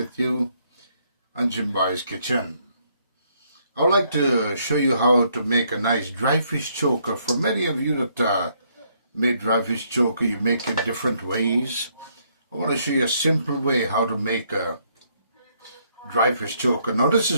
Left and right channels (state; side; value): inverted; both; correlation -0.71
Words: you on Jimbo's Kitchen. I'd like to show you how to make a nice dry fish choker. For many of you that made dry fish choker, you make it different ways. I want to show you a simple way how to make a dry fish choker. Now this